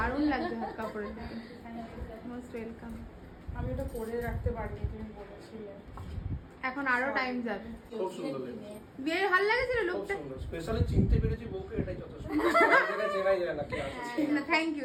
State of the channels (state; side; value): identical; both; correlation 1.00